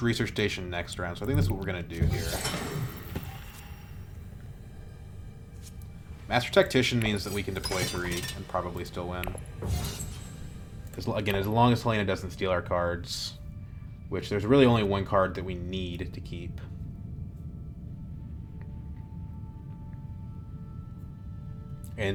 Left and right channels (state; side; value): identical; both; correlation 1.00